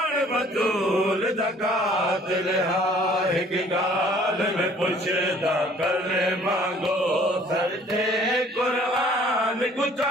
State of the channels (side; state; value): both; normal; correlation 0.56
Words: बतूल ज़कात लिहा हिक गाल में पुछदा कल मांगो सरते कुरान